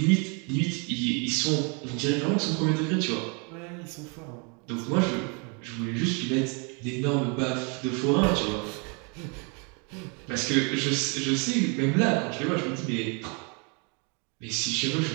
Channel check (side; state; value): left; quieter; 34.3 dB